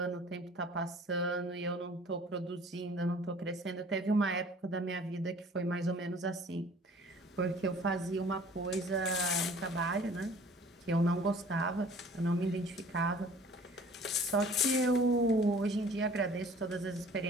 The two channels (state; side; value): normal; both; correlation 0.50